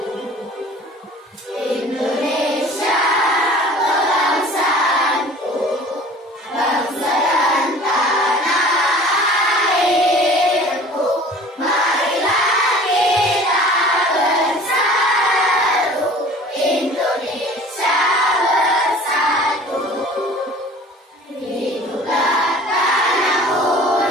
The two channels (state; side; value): normal; both; correlation 0.46